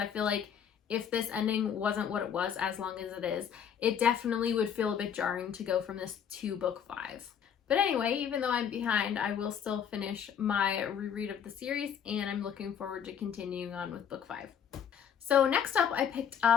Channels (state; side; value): quieter; right; 8.2 dB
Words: feel like if this ending wasn't what it was as long as it is, it definitely would feel a bit jarring to go from this to book 5. But anyway, even though I'm behind, I will still finish my reread of the series, and I'm looking forward to continuing on with book 5. So next up, I picked